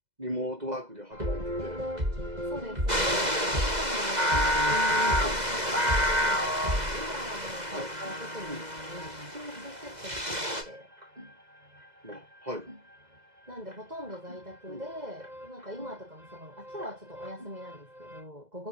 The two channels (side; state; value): left; late; 2.0 ms